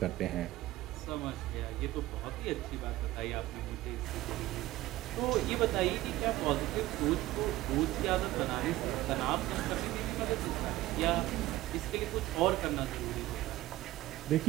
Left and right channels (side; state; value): left; quieter; 16.7 dB